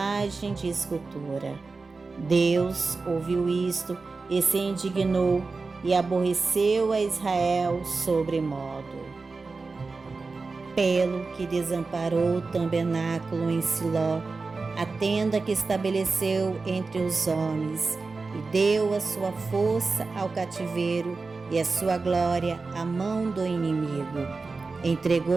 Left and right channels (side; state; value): left; quieter; 4.0 dB